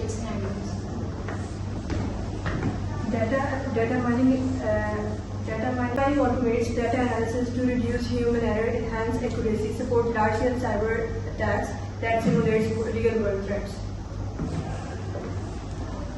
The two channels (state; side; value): identical; both; correlation 1.00